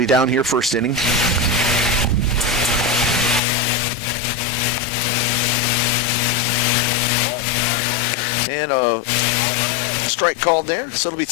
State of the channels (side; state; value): right; drops out; at 3.4 s